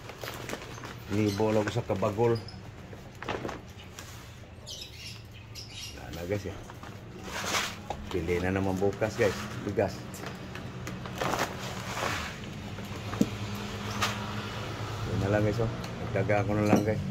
Nibo lang ko sa kabagol. Wala na guys ya. Pili na naman bukas guys. Bigas. Yun na lang guys oh. Nagdaga ko na lang guys.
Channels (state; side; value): identical; both; correlation 1.00